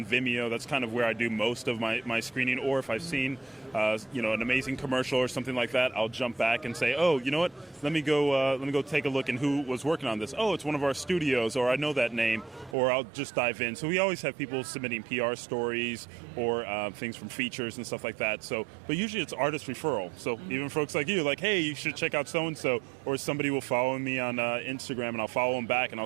Vimeo. That's kind of where I do most of my screening. Or if I've seen an amazing commercial or something like that, I'll jump back and say, oh, you know what? Let me go take a look and who was working on this. Oh, it's one of our studios, or I know that name, or I'll just dive in. So we always have people submitting PR stories or things from features and stuff like that. So, but usually it's artist referral. So even folks like you, like, hey, you should check out so-and-so, or somebody will follow me on Instagram and I'll follow them back and I'll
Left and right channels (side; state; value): left; drops out; at 12.8 s